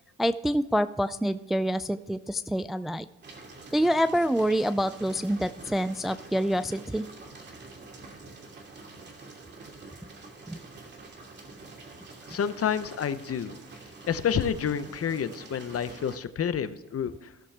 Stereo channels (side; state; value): both; normal; correlation 0.71